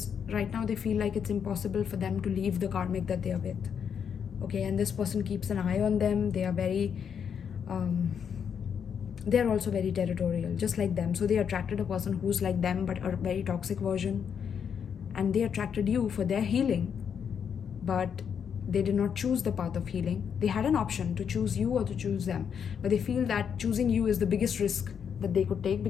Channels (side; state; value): right; quieter; 7.5 dB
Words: right now they feel like it's impossible for them to leave the karmic that they are with. Okay, and this person keeps an eye on them. They are very, they're also very territorial, just like them. So they attracted a person who's like them, but a very toxic version. And they attracted you for their healing, but they did not choose the path of healing. They had an option to choose you or to choose them, but they feel that choosing you is the biggest risk that they could take,